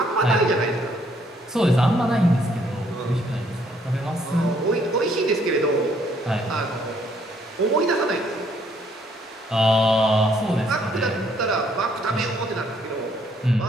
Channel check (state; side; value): normal; both; correlation 0.67